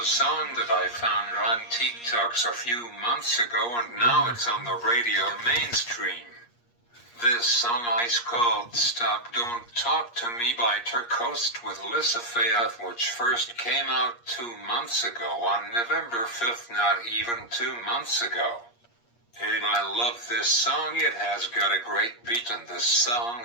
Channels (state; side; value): late; right; 8.5 ms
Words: song that I found on TikToks a few months ago, and now it's on the radio mainstream. This song is called Stop Don't Talk to Me by Turcoast with Lissa Faith, which first came out 2 months ago on November 5th, not even 2 months ago. And I love this song. It has got a great beat and this song